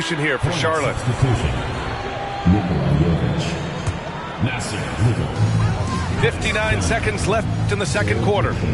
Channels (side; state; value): both; identical; correlation 1.00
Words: here for Charlotte. 59 seconds left in the second quarter.